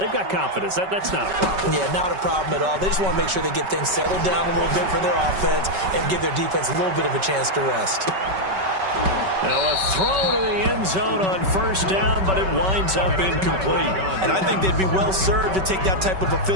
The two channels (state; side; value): late; left; 5.3 ms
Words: got confidence. That's not a problem. Yeah, not a problem at all. They just want to make sure they get things settled down a little bit for their offense and give their defense a little bit of a chance to rest. Now a throw to the end zone on first down, but it winds up incomplete. And I think they'd be well served to take that type of a